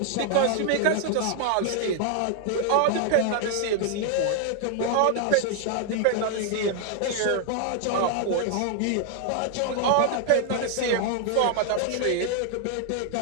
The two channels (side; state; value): both; different; correlation 0.00